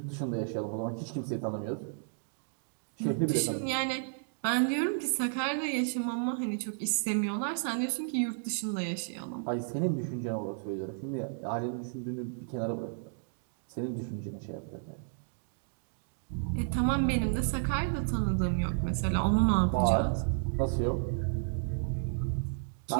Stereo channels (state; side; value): silent; left; digital silence